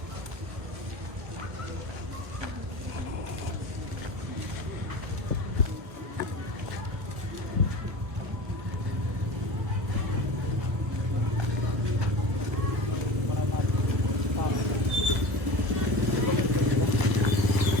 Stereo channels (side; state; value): left; late; 1.4 ms